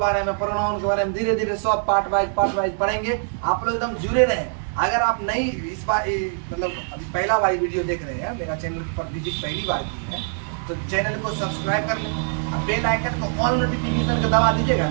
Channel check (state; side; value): silent; left; digital silence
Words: में, प्रोनाउन के बारे में धीरे धीरे सब पार्ट वाइज पढ़ेंगे। आप लोग एकदम जुड़े रहें। अगर आप नहीं इस बार मतलब अभी पहला वाली वीडियो देख रहे हैं, मेरा चैनल पर विजिट पहली बार की है, तो चैनल को सब्सक्राइब कर लें, बेल आइकन को ऑल नोटिफिकेशन का दबा दीजिएगा।